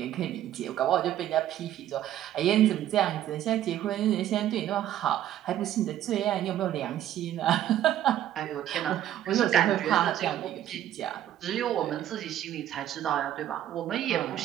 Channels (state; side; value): quieter; left; 11.9 dB